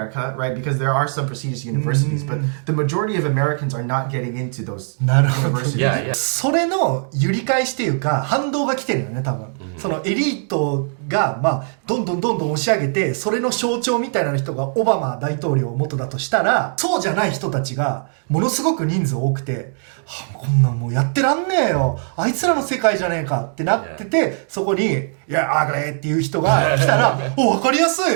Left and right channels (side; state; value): left; silent; 66 dB below the other